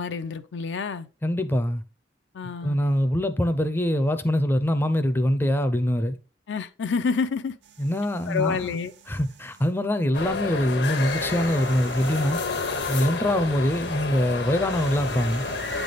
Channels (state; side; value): normal; both; correlation 0.74